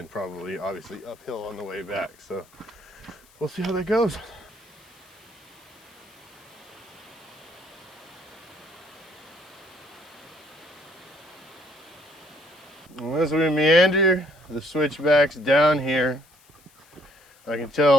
probably obviously uphill on the way back. So we'll see how that goes. As we meander the switchbacks down here, I can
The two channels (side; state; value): left; noise; hiss, 28 dB below the sound